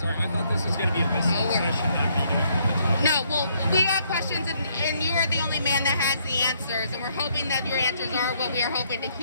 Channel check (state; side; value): inverted; both; correlation -0.70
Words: I thought this was going to be a listening session, not me doing No, well, we got questions, and you are the only man that has the answers, and we're hoping that your answers are what we are hoping to